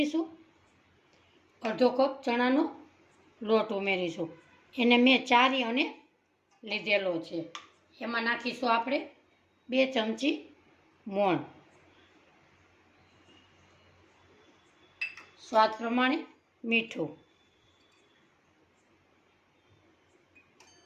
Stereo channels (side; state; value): both; identical; correlation 1.00